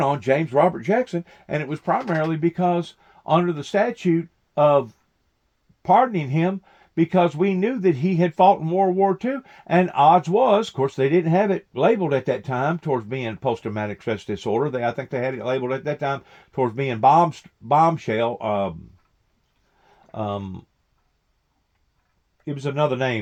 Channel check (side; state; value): both; identical; correlation 1.00